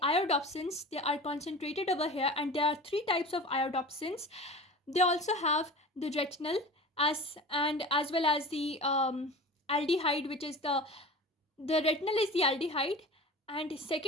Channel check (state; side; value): normal; both; correlation 0.35